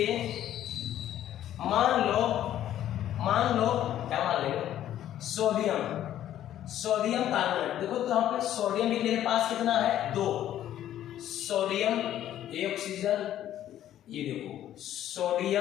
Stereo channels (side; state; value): right; quieter; 11.8 dB